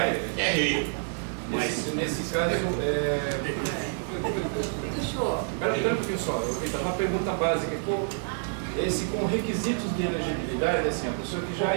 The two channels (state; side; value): silent; left; 59 dB below the other